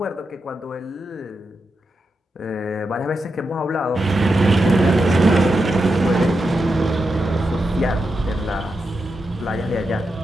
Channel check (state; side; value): normal; both; correlation 0.87